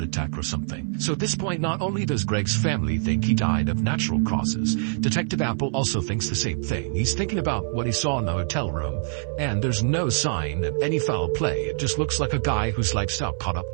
attack or something. So at this point, not only does Greg's family think he died of natural causes, Detective Apple also thinks the same thing. He's thinking about what he saw in the hotel room, and there's no sign of any foul play. It just looks like a guy whose lifestyle caught up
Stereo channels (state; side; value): silent; left; 60 dB below the other